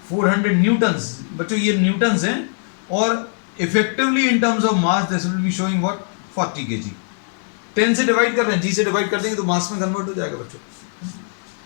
400 न्यूटन्स. बच्चों ये न्यूटन्स हैं और effectively in terms of mass this will be showing what 40 kg. 10 से डिवाइड कर रहे हैं, जी से डिवाइड कर देंगे तो मास में कन्वर्ट हो जाएगा बच्चों.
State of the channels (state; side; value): silent; right; 58 dB below the other